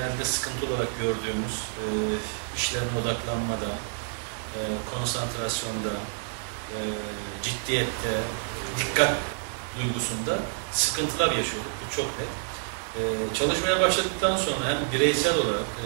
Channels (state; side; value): silent; left; 59 dB below the other